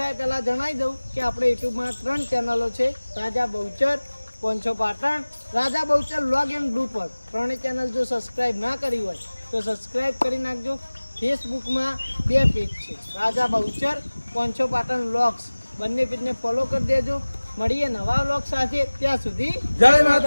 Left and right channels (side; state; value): both; inverted; correlation -1.00